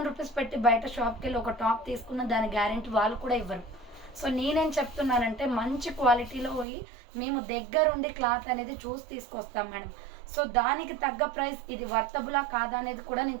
రూపీస్ పెట్టి బయట షాప్కి వెళ్ళి ఒక టాప్ తీసుకున్న దాని గ్యారెంటీ వాళ్ళు కూడా ఇవ్వరు. సో నేనేం చెప్తున్నానంటే, మంచి క్వాలిటీలో మేము దగ్గరుండి క్లాత్ అనేది చూసి తీసుకొస్తాం మేడం. సో దానికి తగ్గ ప్రైస్ ఇది వర్తబులా కాదా అనేది కూడా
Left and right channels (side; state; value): left; drops out; at 6.7 s